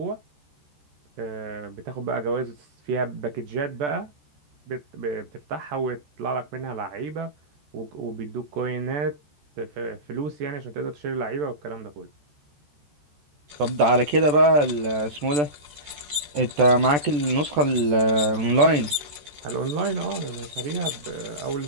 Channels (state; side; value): late; left; 14 ms